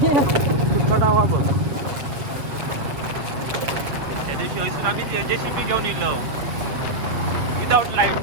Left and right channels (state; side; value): late; left; 7.7 ms